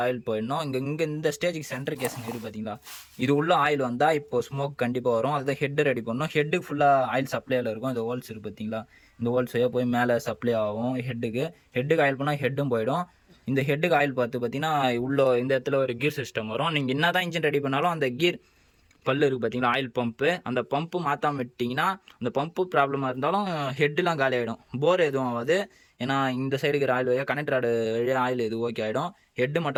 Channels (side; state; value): both; identical; correlation 1.00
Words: ஆயில் போயிடணும். இங்கே இந்த ஸ்டேஜுக்கு சென்டர் கேஸுங்க இருக்குது பார்த்தீங்களா, இது உள்ள ஆயில் வந்தால் இப்போ ஸ்மோக் கண்டிப்பாக வரும். அதுதான் ஹெட்டு ரெடி பண்ணணும். ஹெட்டுக்கு ஃபுல்லாக ஆயில் சப்ளையில் இருக்கும். இந்த ஹோல்ஸ் இருக்குது பார்த்தீங்களா, இந்த ஹோல்ஸ் போய் மேலே சப்ளை ஆகும். ஹெட்டுக்கு ஆயில் பண்ணால் ஹெட்டும் போயிடும். இந்த ஹெட்டுக்கு ஆயில் பார்த்தீங்கன்னா உள்ள இந்த இடத்துல ஒரு கீர் சிஸ்டம் வரும். நீங்கள் என்ன தான் இன்ஜின் ரெடி பண்ணாலும் அந்த கீர் பல்லு இருக்குது பார்த்தீங்களா, ஆயில் பம்பு, அந்த பம்பு மாற்றாம விட்டிங்கன்னா அந்த பம்பு ப்ராப்ளமாக இருந்தாலும் ஹெட்டுலாம் காலி ஆகிடும். போர் எதுவும் ஆகாது. ஏன்னா இந்த சைடு இருக்கிற ஆயில் வழியாக கனெக்டர் ஆடு வழியாக ஆயில் எது ஓகே ஆகிடும். ஹெட்டு